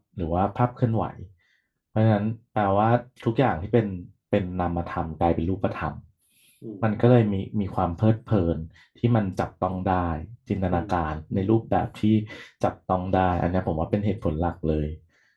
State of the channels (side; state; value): both; identical; correlation 1.00